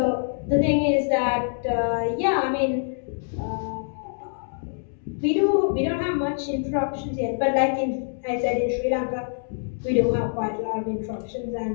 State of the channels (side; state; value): right; silent; digital silence